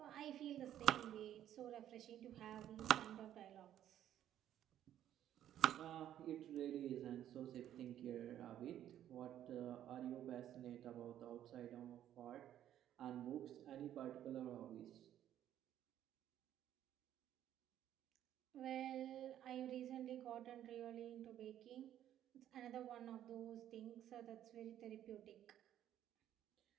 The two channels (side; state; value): left; quieter; 11.4 dB